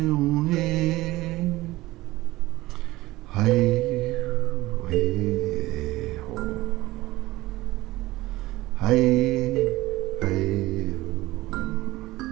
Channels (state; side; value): quieter; left; 18.5 dB